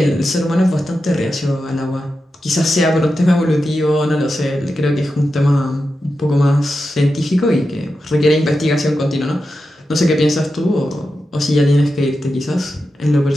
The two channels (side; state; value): both; normal; correlation 0.90